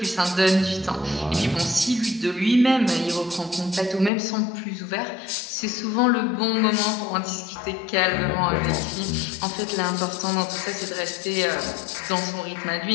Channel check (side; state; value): right; drops out; at 4.1 s